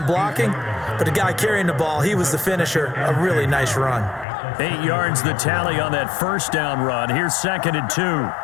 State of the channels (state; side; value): drops out; right; at 4.2 s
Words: blocking, but the guy carrying the ball, he was the finisher. A really nice run. 8 yards the tally on that first down run. Here's 2nd and 2. Watch 18, 18,